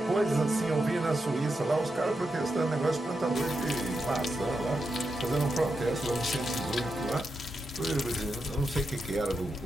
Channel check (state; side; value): normal; both; correlation 0.87